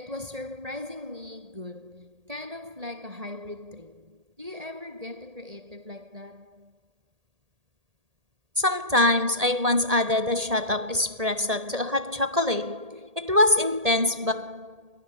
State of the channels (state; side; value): late; left; 1.8 ms